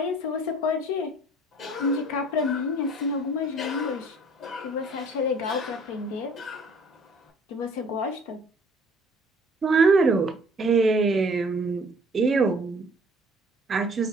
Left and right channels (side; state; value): both; normal; correlation 0.53